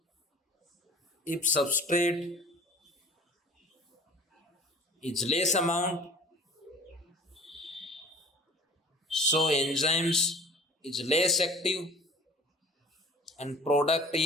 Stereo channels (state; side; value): normal; both; correlation 0.45